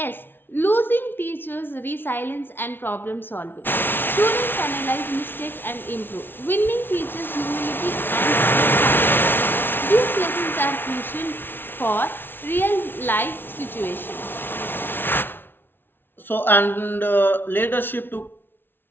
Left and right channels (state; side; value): late; right; 0.10 ms